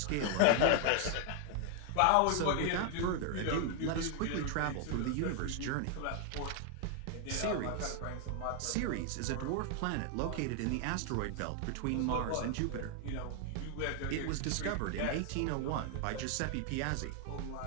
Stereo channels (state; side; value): different; both; correlation 0.00